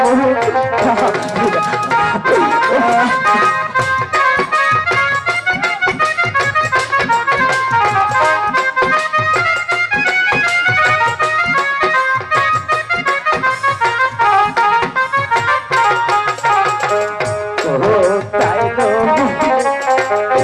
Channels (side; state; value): both; identical; correlation 1.00